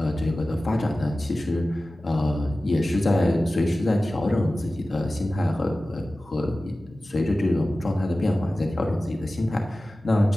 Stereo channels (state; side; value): normal; both; correlation 0.96